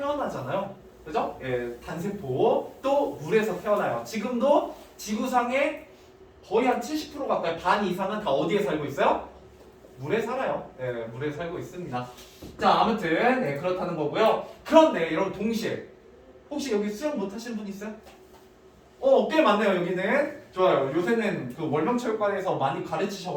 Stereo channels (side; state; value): both; identical; correlation 1.00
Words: 그죠? 단세포 또 물에서 태어나요. 지금도 지구상의 거의 한 70% 가까이 반 이상은 다 어디에 살고 있어요? 물에 살아요. 물에 살고 있습니다. 자, 아무튼 그렇다는 거고요. 그런데 여러분 동시에 혹시 여기 수영 못하시는 분 있어요? 꽤 많네요. 여기는 좋아요. 요새는 그 월명체육관에서 많이